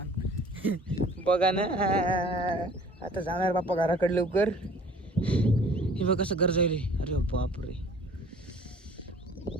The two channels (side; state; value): both; normal; correlation 0.50